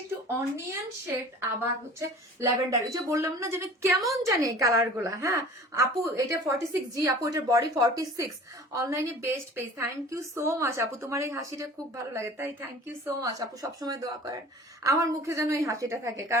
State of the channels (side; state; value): both; normal; correlation 0.43